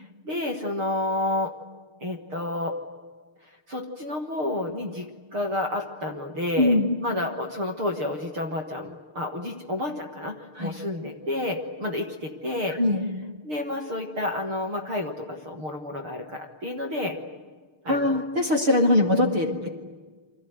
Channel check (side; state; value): left; late; 6.6 ms